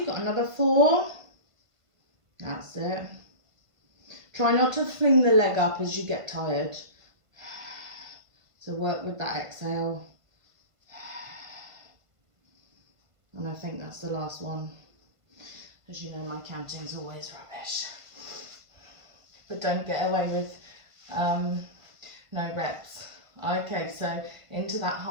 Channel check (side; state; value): left; late; 1.5 ms